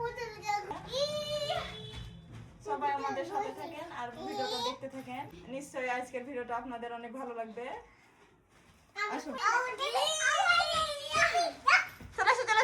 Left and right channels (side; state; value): both; identical; correlation 1.00